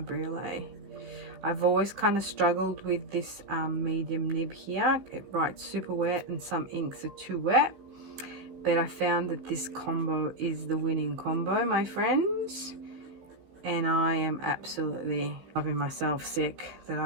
I've always kind of struggled with this medium nib here. It writes super wet and some inks are too wet, but I found that this combo is the winning combo, my friends, and I am absolutely loving myself sick that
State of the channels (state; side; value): late; left; 16 ms